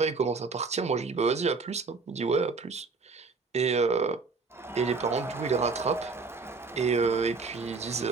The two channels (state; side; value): quieter; left; 4.3 dB